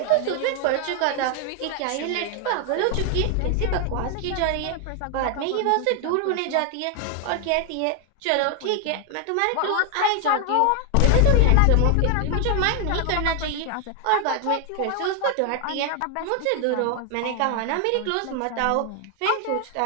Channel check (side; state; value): both; different; correlation 0.00